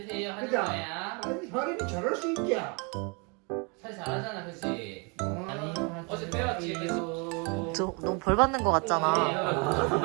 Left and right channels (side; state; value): left; quieter; 33.0 dB